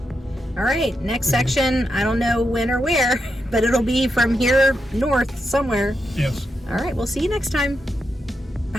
All right, next section. I don't know when or where, but it'll be from here north somewhere. Yes. All right, we'll see you next time.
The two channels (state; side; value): normal; both; correlation 0.85